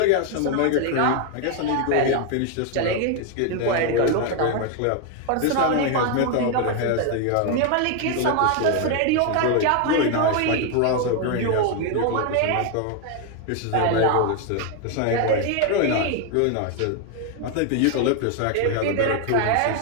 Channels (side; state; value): both; different; correlation 0.01